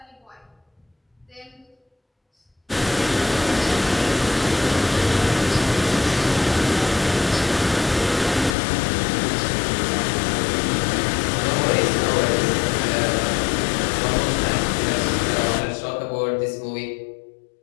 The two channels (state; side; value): drops out; right; at 8.6 s